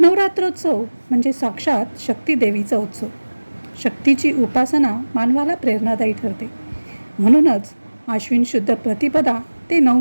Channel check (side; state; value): both; inverted; correlation -1.00